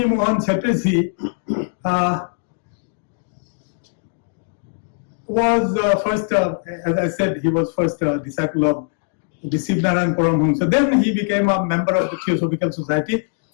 Mohan Chatterjee was first, as I said, he was first disciple of the Sivnarayan Paramhamsa. Then he became a member of the Theosophical Society,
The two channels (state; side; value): silent; right; 65 dB below the other